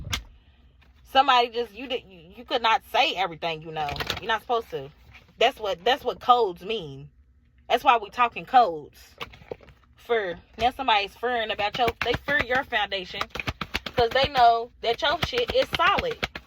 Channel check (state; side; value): identical; both; correlation 1.00